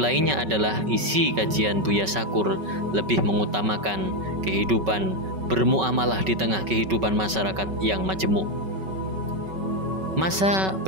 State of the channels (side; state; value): left; late; 5.3 ms